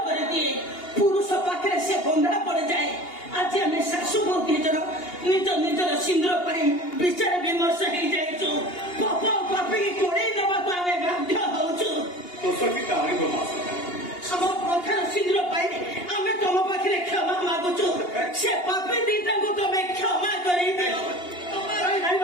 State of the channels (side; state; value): right; late; 2.8 ms